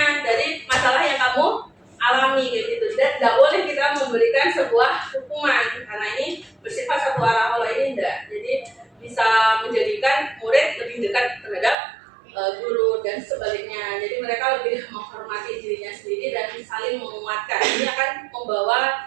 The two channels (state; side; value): drops out; left; at 11.8 s